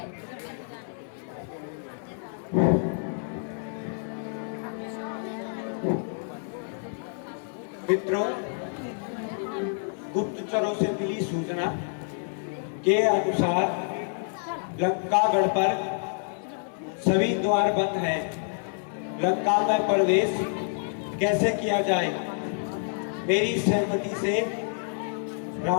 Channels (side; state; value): right; silent; digital silence